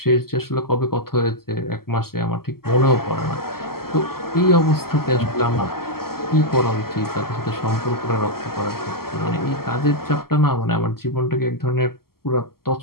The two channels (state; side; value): late; right; 0.94 ms